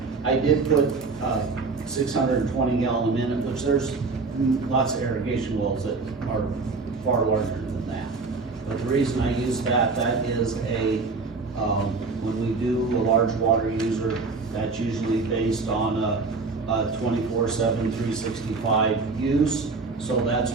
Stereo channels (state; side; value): quieter; left; 4.2 dB